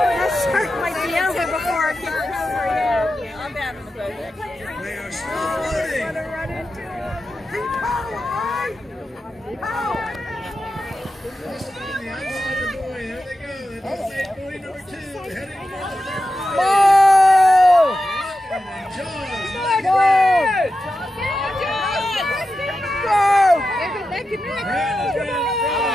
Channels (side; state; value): both; normal; correlation 0.91